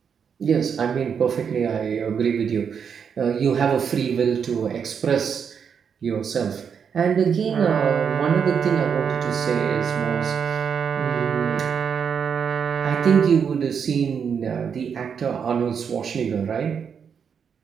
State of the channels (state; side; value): quieter; left; 7.0 dB